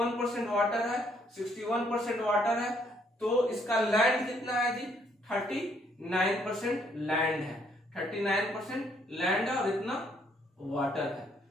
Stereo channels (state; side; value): normal; both; correlation 0.68